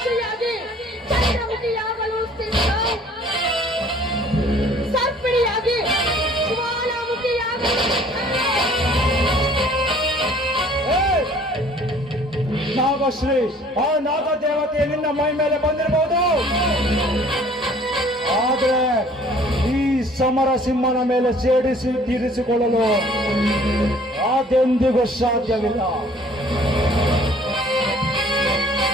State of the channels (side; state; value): both; normal; correlation 0.54